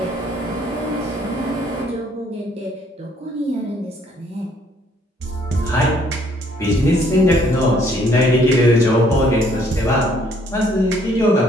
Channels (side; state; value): both; normal; correlation 0.64